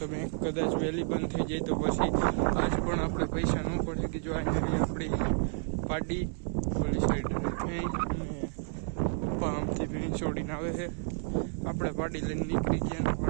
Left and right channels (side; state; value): left; silent; 57 dB below the other